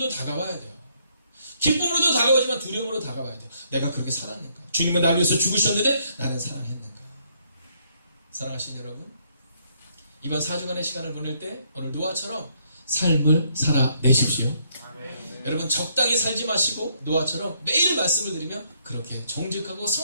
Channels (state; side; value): inverted; both; correlation -0.70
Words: 다가와야 돼요. 기쁨으로도 다가오지만 두려움으로 다가와야 돼요. 내가 그렇게 살았는가? 주님은 나를 위해서 죽으셨는데 나는 사랑했는가? 사랑하신 여러분, 이번 4주간의 시간을 보낼 때 오늘 노아처럼 삶을 살아내십시오. 아멘. 여러분 적당히 살지 마시고 노아처럼 매일 말씀을 드리며 그렇게 정직하고